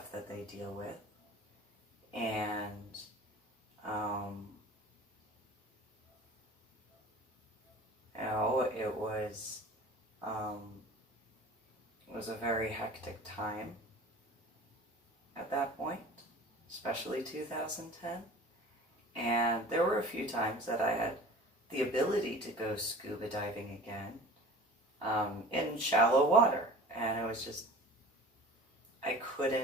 that they deal with. And you know, it was a very hectic time at that point, especially 2010. And there were a few times that I had the ability to go scuba diving again in shallow water. And it was just, I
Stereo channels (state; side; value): normal; both; correlation 0.41